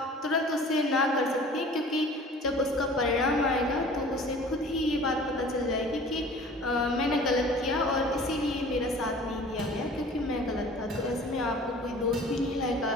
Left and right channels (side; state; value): both; normal; correlation 0.46